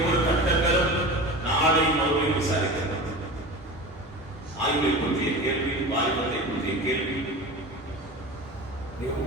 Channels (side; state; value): both; normal; correlation 0.32